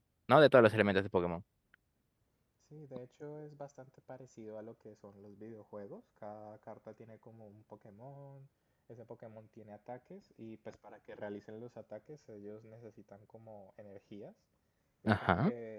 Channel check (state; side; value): identical; both; correlation 1.00